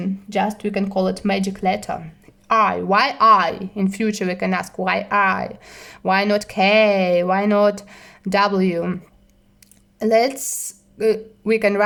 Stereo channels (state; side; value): identical; both; correlation 1.00